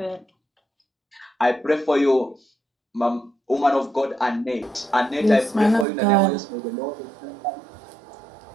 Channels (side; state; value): left; drops out; at 5.9 s